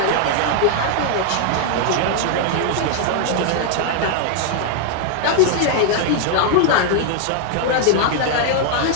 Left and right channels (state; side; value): different; both; correlation 0.00